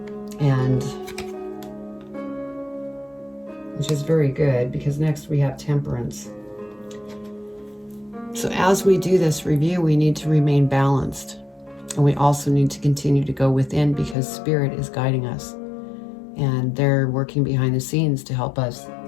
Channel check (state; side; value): drops out; right; at 14.2 s